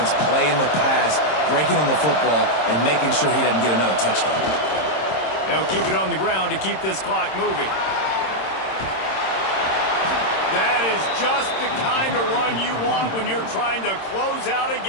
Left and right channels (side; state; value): right; late; 26 ms